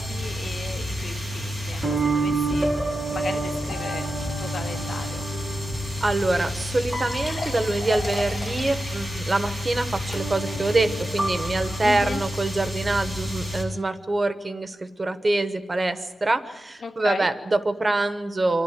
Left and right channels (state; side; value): normal; both; correlation 0.92